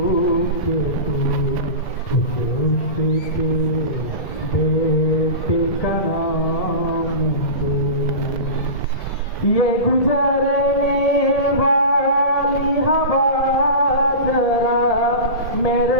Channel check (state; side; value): late; right; 2.1 ms